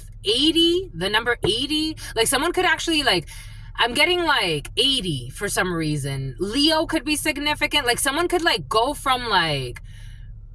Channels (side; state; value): both; identical; correlation 1.00